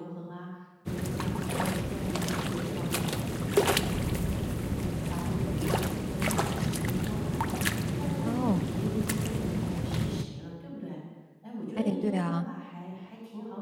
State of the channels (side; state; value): both; identical; correlation 1.00